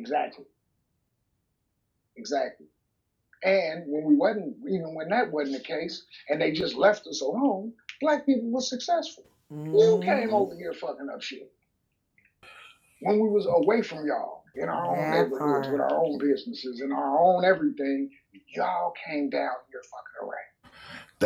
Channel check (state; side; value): identical; both; correlation 1.00